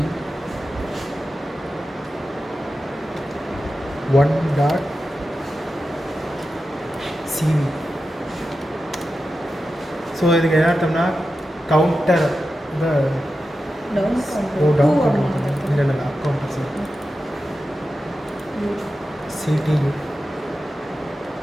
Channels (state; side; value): normal; both; correlation 0.92